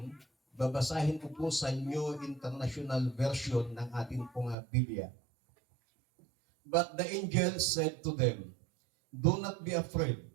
babasahin ko po sa New International Version ng ating pong Biblia. But the angel said to them, "Do not be afraid.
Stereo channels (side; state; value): left; drops out; at 4.5 s